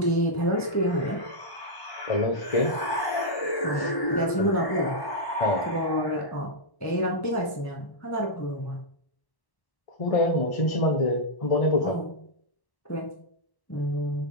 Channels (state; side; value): late; right; 1.1 ms